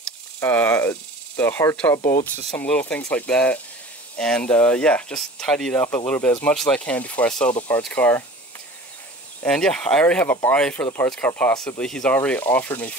the hardtop bolts, just some little things like that. And yeah, just tidy it up a little bit as much as I can before I sell the parts car. And yeah, I already have a buy for the parts car possibly. He's already offered me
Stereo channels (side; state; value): both; normal; correlation 0.41